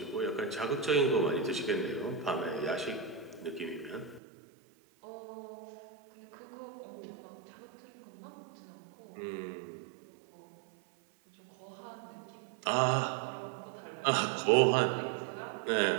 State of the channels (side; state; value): left; drops out; at 4.2 s